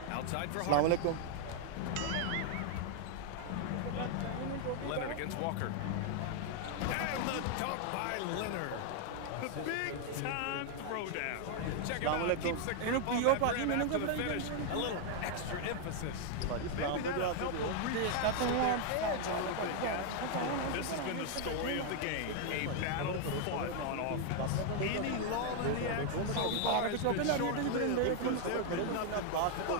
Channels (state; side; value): different; both; correlation 0.00